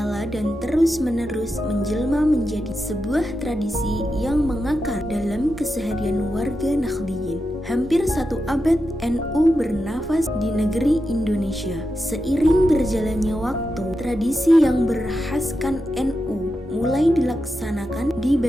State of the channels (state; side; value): normal; both; correlation 0.88